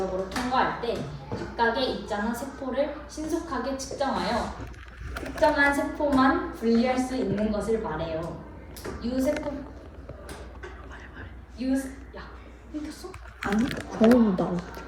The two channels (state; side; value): identical; both; correlation 1.00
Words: 통과할 때 각각의 있잖아 세포를 신속하게 측정하여 특정한 세포만 분리할 수 있는 것을 말해요. 유세포 야, 끊겼어? 아니, 너무 나와.